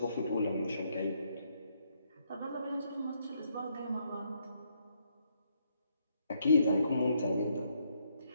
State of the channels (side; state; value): both; inverted; correlation -0.74